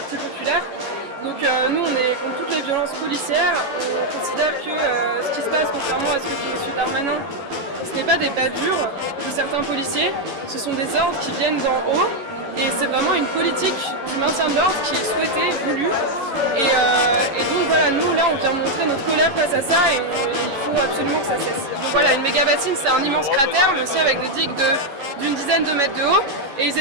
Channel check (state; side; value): late; left; 11 ms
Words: populaires. Donc nous, on est contre toutes les violences policières. On considère que ce qui se passe, contrairement à ce que dit M. Darmanin, ce n'est pas des bavures de certains policiers, ce sont des ordres qui viennent d'en haut. Et c'est vraiment une politique du maintien de l'ordre qui est souhaitée, voulue. Et donc voilà, nous là on vient montrer notre colère face à ça et il faut absolument que ça cesse. Donc voilà, une méga bassine, c'est un immense cratère, mais aussi avec des digues d'une dizaine de mètres de haut. Et ils